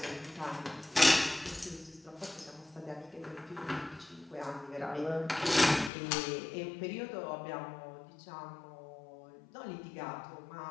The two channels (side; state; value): right; drops out; at 5.9 s